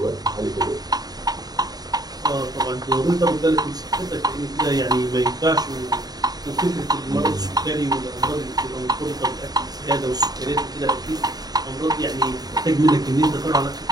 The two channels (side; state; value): left; late; 0.19 ms